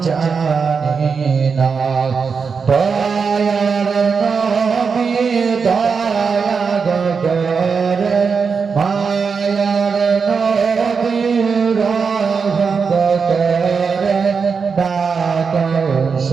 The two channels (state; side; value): quieter; left; 5.5 dB